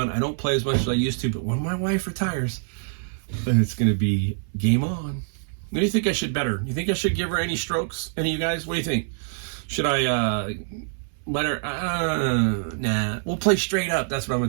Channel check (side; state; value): left; silent; 62 dB below the other